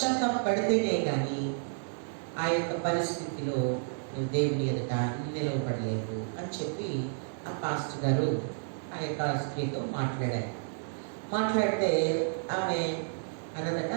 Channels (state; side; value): silent; left; digital silence